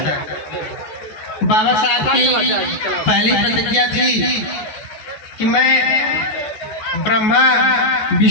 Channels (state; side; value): late; right; 14 ms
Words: बाबा साहब की पहली प्रतिज्ञा थी कि मैं ब्रह्मा,